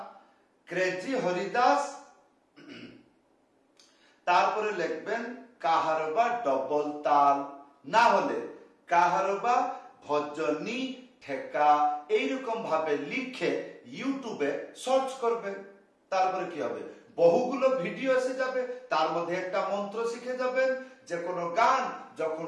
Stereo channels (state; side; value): identical; both; correlation 1.00